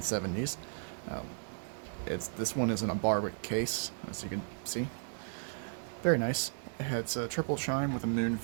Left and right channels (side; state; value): left; silent; digital silence